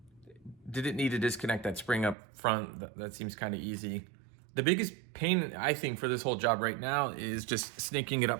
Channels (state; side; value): drops out; left; at 2.1 s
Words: Didn't need to disconnect that spring up front. That seems kind of easy. The biggest pain, I think, for this whole job right now is just snaking it